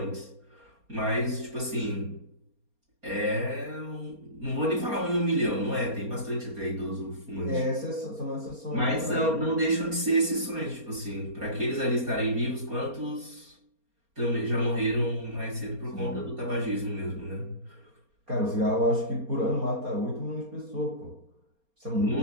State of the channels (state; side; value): late; left; 4.3 ms